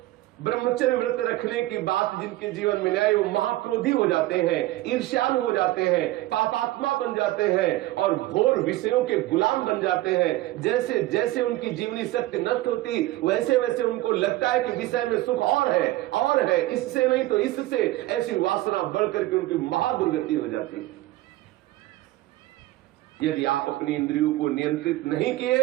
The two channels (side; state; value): left; quieter; 17.3 dB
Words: ब्रह्मचर्य व्रत रखने की बात जिनके जीवन में आए वो महाक्रोधी हो जाते हैं, ईर्ष्यालु हो जाते हैं, पापात्मा बन जाते हैं और घोर विषयों के गुलाम बन जाते हैं। जैसे जैसे उनकी जीवनी शक्ति नष्ट होती वैसे वैसे उनको लगता है कि विषय में सुख और है, इससे नहीं तो इससे, ऐसी वासना बढ़ करके उनकी महादुर्गति हो जाती है। यदि आप अपनी इंद्रियों को नियंत्रित नहीं